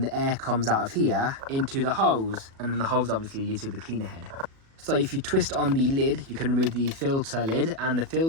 the air comes out of here into the hose, and then the hose obviously leads to the cleaner head. So if you twist on the lid, you can remove the filter lid and the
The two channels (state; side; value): late; left; 37 ms